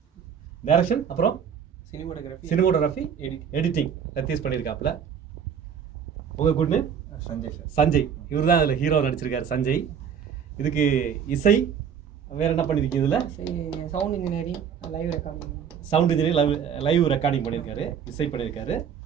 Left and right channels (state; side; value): quieter; left; 7.7 dB